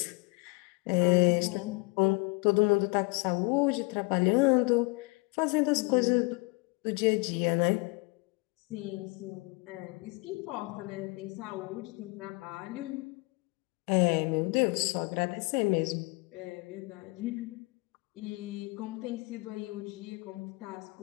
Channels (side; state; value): right; quieter; 27.4 dB